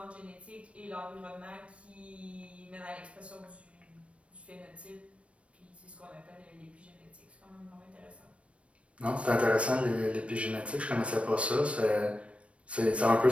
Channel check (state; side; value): late; left; 0.062 ms